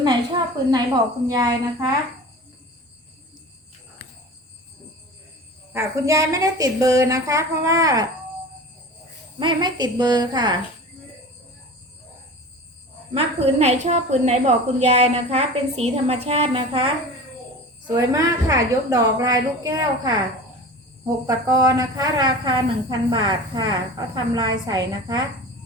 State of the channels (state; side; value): normal; both; correlation 0.35